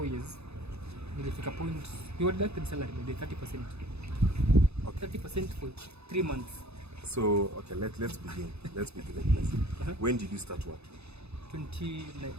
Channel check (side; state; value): left; late; 0.79 ms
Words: years, nilifika point you were deducted salary by 30%. 30% for 3 months. So okay, let's begin. Let's begin like this. When did you start work?